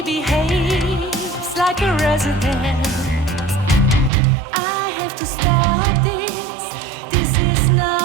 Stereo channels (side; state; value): left; drops out; at 4.1 s